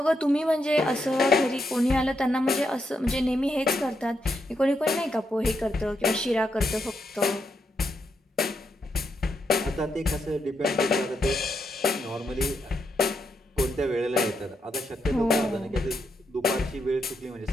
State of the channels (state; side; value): normal; both; correlation 0.81